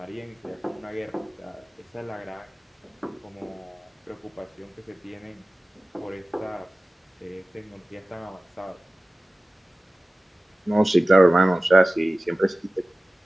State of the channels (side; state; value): both; normal; correlation 0.97